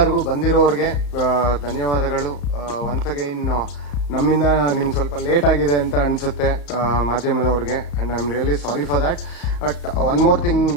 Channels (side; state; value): right; late; 35 ms